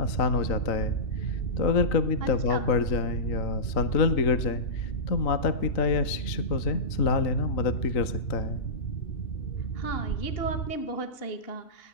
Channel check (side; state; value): right; late; 3.8 ms